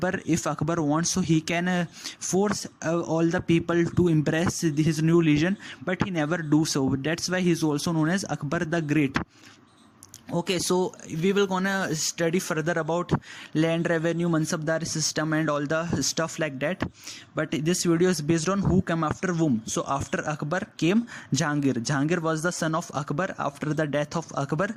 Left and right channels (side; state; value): both; identical; correlation 1.00